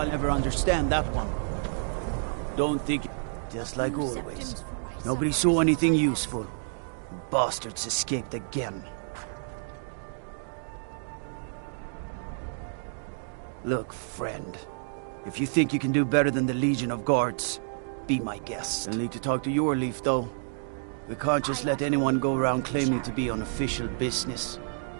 ever understand that one. Don't think... Just like always. Nobody saw anything useful. Bastards escaped again. Look, friend. If you think you can do better than the Legion of Guards, be my guest. I'll need to talk to your Leaf, though. We can't just let anyone go around claiming to be on official business.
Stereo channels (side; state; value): left; silent; digital silence